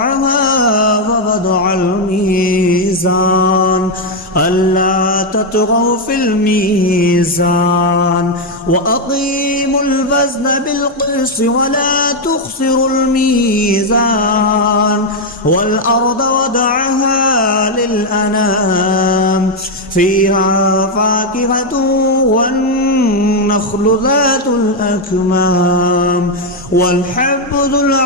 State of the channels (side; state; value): both; normal; correlation 0.02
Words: ووضع الميزان ألا تطغوا في الميزان وأقيموا الوزن بالقسط ولا تخسروا الميزان والأرض وضعها للأنام فيها فاكهة والنخل ذات الأكمام والحب ذو